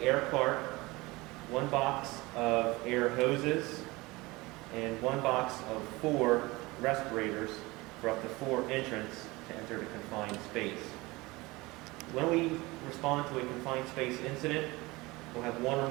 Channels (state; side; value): quieter; left; 22.3 dB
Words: air cart, one box of air hoses, and one box of 4 respirators for up to 4 entrants to enter the confined space. When we respond to a confined space incident, we'll have 1 or